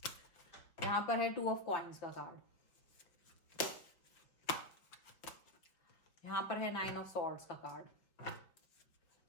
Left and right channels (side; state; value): right; late; 5.3 ms